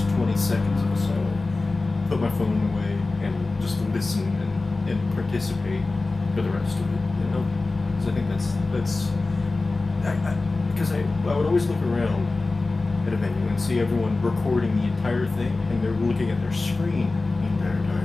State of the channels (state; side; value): quieter; right; 3.4 dB